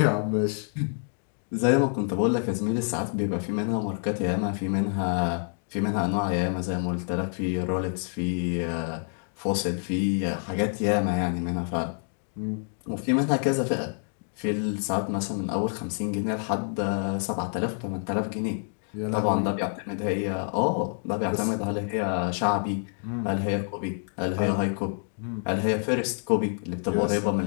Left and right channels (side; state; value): right; silent; 60 dB below the other